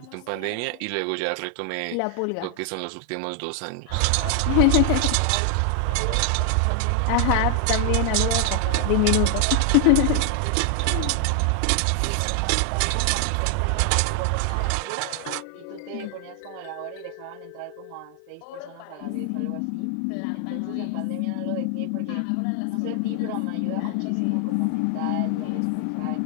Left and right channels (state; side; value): different; both; correlation 0.00